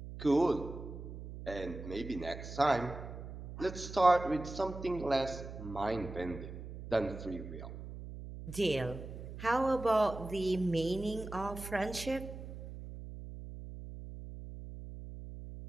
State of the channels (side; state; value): right; noise; hum, 10 dB below the sound